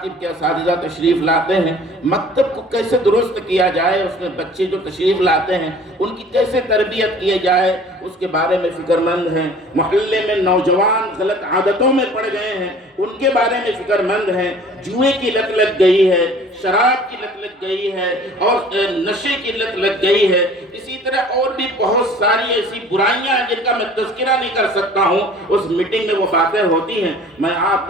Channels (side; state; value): both; normal; correlation 0.49